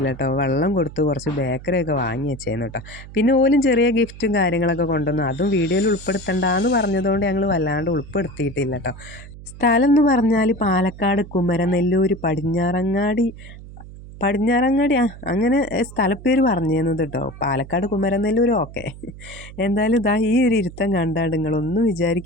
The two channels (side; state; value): right; noise; hum, 16 dB below the sound